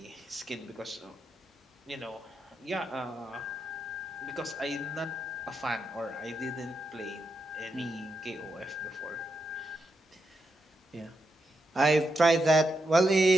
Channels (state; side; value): normal; both; correlation 0.85